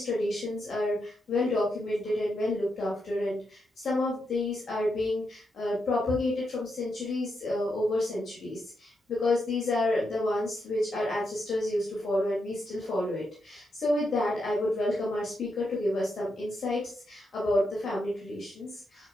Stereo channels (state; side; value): normal; both; correlation 0.83